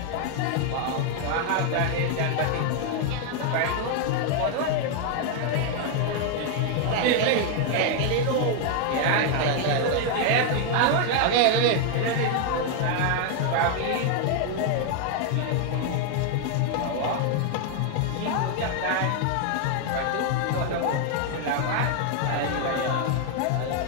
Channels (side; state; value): both; different; correlation 0.00